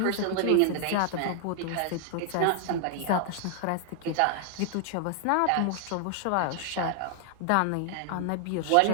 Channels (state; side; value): different; both; correlation 0.00